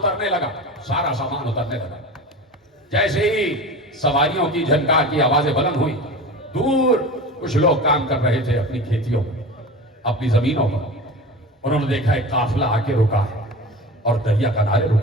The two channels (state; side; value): normal; both; correlation 0.32